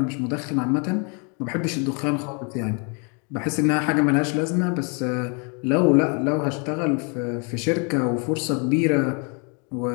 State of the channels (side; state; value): right; quieter; 36.2 dB